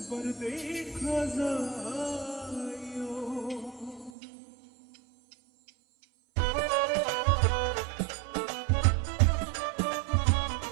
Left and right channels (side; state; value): left; drops out; at 4.1 s